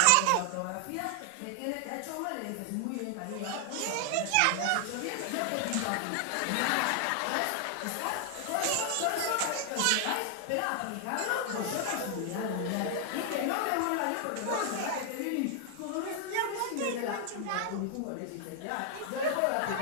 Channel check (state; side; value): different; both; correlation 0.00